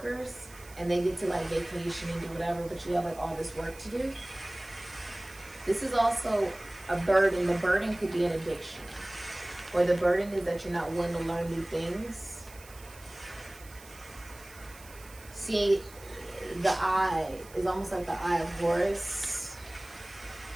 and they get to like vacation and do whatever, but you have like all this work to do. This is also a burden. The burden could be an addiction, or the burden is that you're not willing to learn new things. See, the eye is almost like the eye of Horus.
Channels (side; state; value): right; noise; hiss, 20 dB below the sound